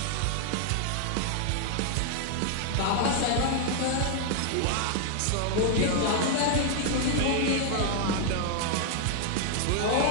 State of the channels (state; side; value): different; both; correlation 0.00